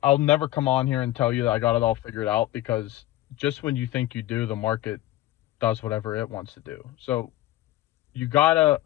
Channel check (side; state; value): right; quieter; 15.3 dB